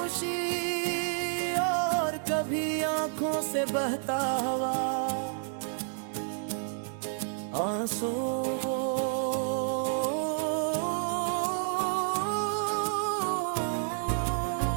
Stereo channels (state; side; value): silent; left; 58 dB below the other